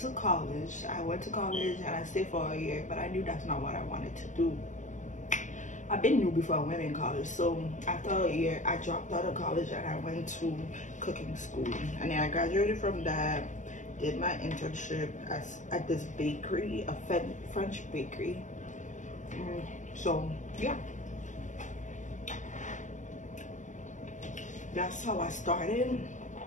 college. And I stayed for a year, but I knew that's not what I wanted to do. I've been new before I went in college. So after a year, I dropped out of college and I went to cooking school. And then I graduated from that, did my internship at this bakery, a French bakery. So yeah, that's how I started.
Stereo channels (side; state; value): right; late; 0.36 ms